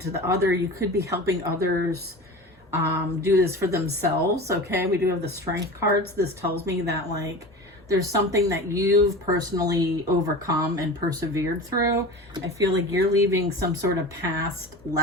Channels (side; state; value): both; normal; correlation 0.33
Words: to the other. You could be helping others do this for themselves. Okay, we do have the Strength cards. This tells me that like there's something that you've personally overcome and persevered through. I feel like you're leaving some sort of past